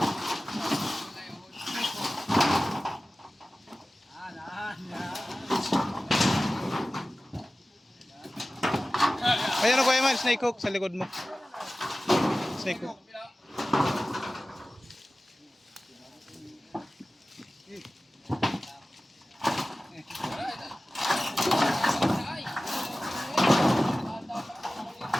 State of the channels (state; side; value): normal; both; correlation 0.96